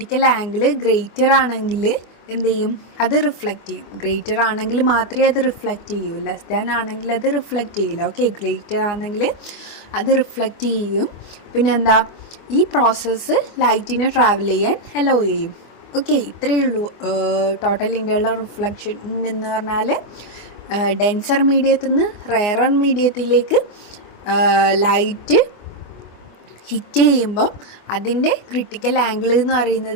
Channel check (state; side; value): late; right; 24 ms